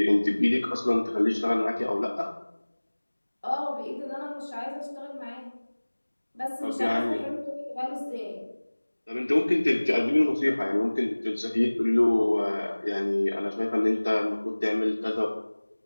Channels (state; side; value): inverted; both; correlation -1.00